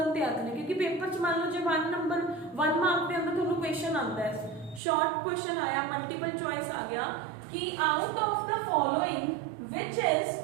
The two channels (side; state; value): left; drops out; at 4.8 s